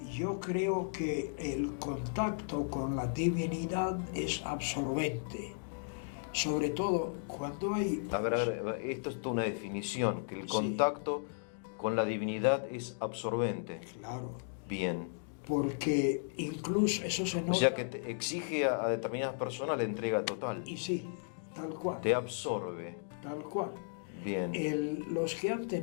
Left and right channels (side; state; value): right; silent; digital silence